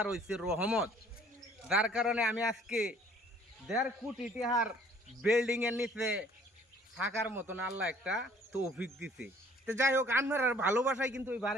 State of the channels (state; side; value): normal; both; correlation 0.56